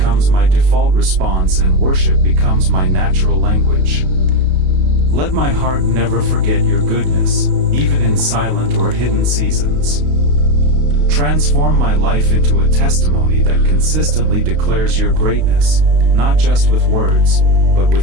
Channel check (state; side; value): late; left; 32 ms